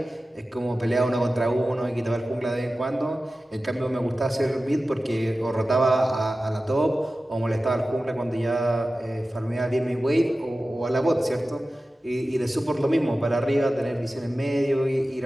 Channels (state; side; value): normal; both; correlation 0.95